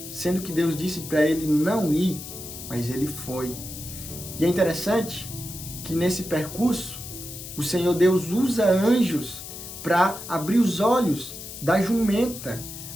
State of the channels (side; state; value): left; noise; hiss, 11 dB below the sound